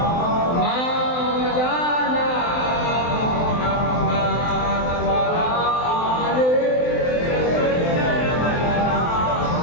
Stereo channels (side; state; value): right; late; 23 ms